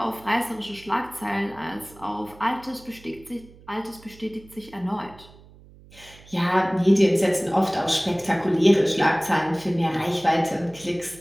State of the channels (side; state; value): right; noise; hum, 23 dB below the sound